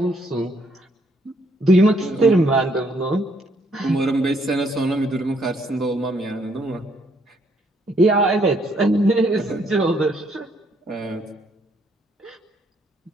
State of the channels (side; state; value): both; normal; correlation 0.69